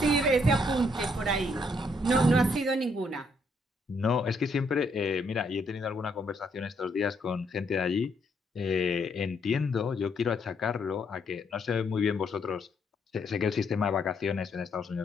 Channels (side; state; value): both; normal; correlation 0.72